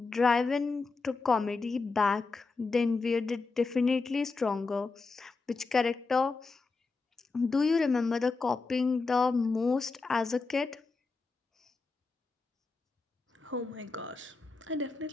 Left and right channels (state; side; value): quieter; right; 4.1 dB